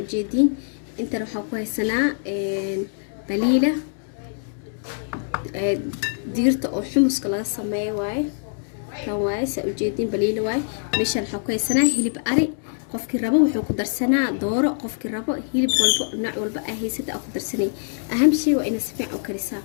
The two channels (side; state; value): right; silent; digital silence